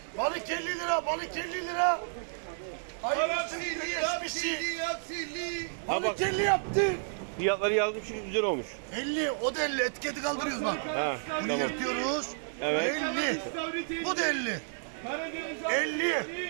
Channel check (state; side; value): silent; left; digital silence